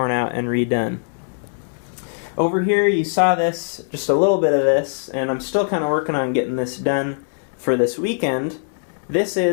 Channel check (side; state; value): right; silent; digital silence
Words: out and redone. Over here you saw this, just a little bit of this, and I'm still kind of working on getting this done for this weekend. This